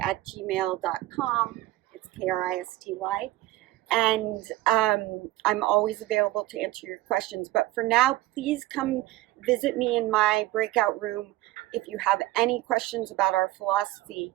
It's Kristy. And I'm always available to answer your questions. But for now, please come visit me in my breakout room if you have any questions about our philosophy,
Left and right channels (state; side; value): quieter; left; 16.8 dB